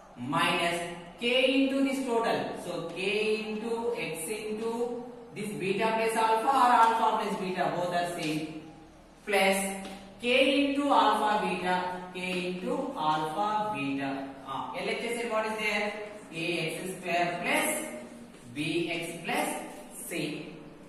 minus k into this total. So k into x into this beta plus alpha or alpha plus beta, both are same. Plus k into alpha beta, k into alpha beta. LHS what is there? Ax square plus bx plus c.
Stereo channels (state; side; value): identical; both; correlation 1.00